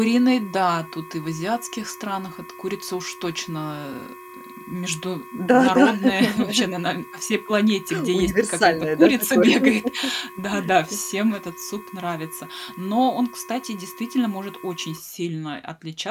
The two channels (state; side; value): identical; both; correlation 1.00